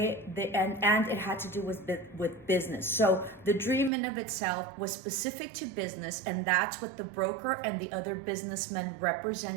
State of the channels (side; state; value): left; drops out; at 3.9 s